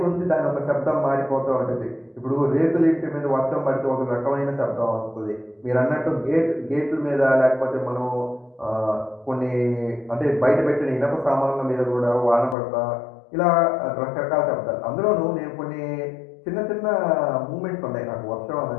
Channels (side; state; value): right; drops out; at 12.6 s